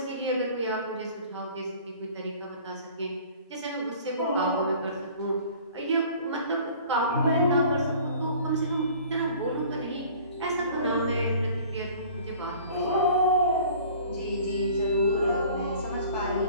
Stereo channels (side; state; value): both; inverted; correlation -0.48